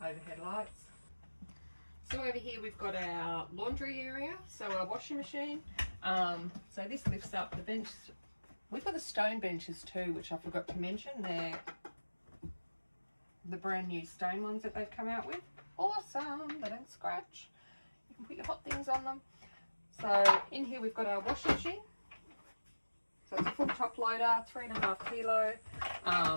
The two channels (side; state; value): both; inverted; correlation -1.00